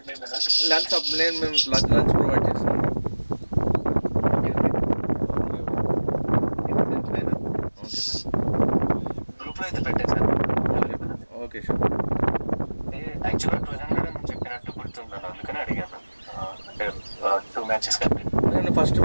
లంచ్ నేను మేము లంచ్ ప్రొవైడ్ చేస్తాం. గ్రూప్ లో అయితే పెట్టేసాను. Okay sure. యాక్చువల్గా 200 అని చెప్పినట్టు గుర్తున్నాను, అందుకని అడిగాను. అంటే 2 matches కాబట్టి నేను ఫస్ట్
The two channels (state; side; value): inverted; both; correlation -1.00